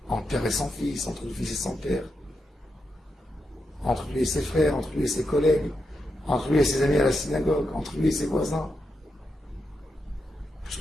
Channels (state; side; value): normal; both; correlation 0.85